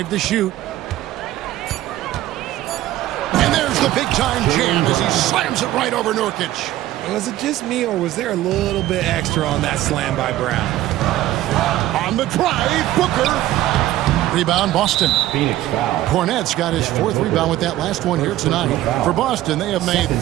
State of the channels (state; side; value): quieter; left; 14.7 dB